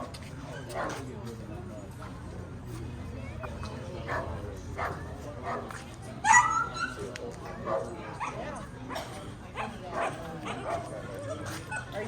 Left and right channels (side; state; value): both; identical; correlation 1.00